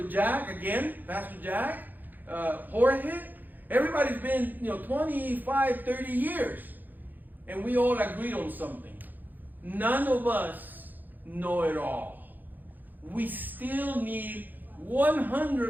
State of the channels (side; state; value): left; late; 0.086 ms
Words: Jack, again, Pastor Jack, Jorge, everybody's been, 25, 30 years. And we all agreed on something. None of us know it all. We still need